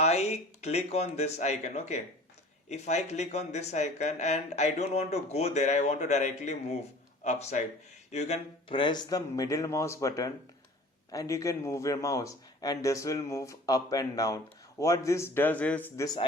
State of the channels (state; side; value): normal; both; correlation 0.45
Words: click on this icon, okay, if I click on this icon and I don't want to go there, I want to directly move upside, you can press the middle mouse button and you can move your mouse, and this will move up and down. What this does is this